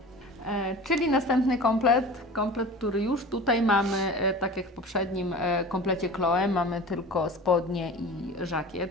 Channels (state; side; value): normal; both; correlation 0.37